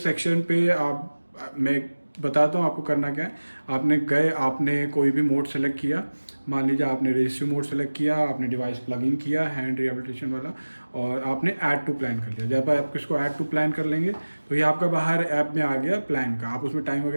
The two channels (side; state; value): both; inverted; correlation -1.00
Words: पे मैं बताता हूँ आपको करना क्या है। आपने कोई भी मोड सेलेक्ट किया, मान लीजिए आपने रेजिस्टिव मोड सेलेक्ट किया, आपने डिवाइस प्लग इन किया हैंड रिहैबिलिटेशन वाला, और आपने ऐड टू प्लान कर लिया। जब आप इसको ऐड टू प्लान कर लेंगे तो ये आपका बाहर ऐप में आ गया प्लान का। आप उसमें टाइम